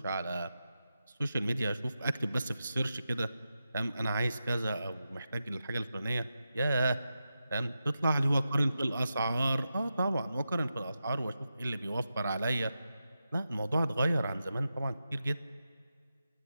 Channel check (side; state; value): both; inverted; correlation -0.90